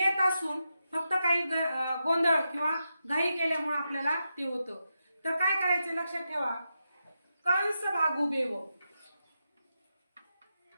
असून फक्त काही गोंधळ किंवा घाई केल्यामुळे आपल्याला ते होतं। तर काय करायचं लक्षात ठेवा, कंस भागू बेव।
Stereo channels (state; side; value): inverted; both; correlation -0.87